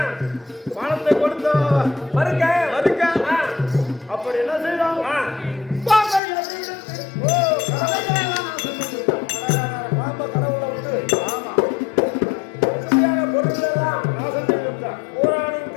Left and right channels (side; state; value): right; drops out; at 6.2 s